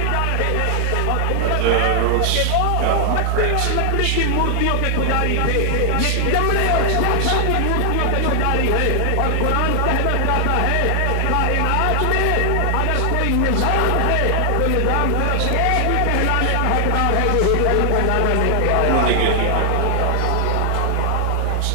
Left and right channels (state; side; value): different; both; correlation 0.00